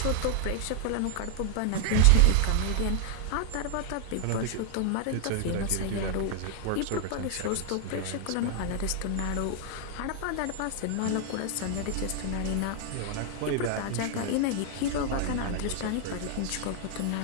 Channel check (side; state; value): both; different; correlation 0.00